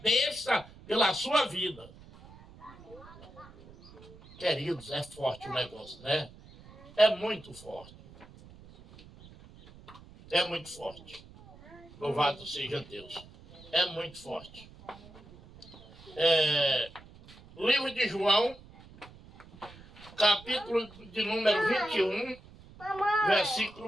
pela sua vida. Queridos, é forte o negócio, né? É muito forte. É muito forte. Louvado seja Deus. É muito forte. Livro de João, capítulo de número 21,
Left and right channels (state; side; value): noise; right; rumble, 21 dB below the sound